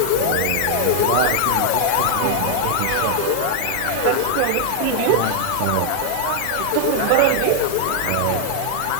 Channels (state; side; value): different; both; correlation 0.00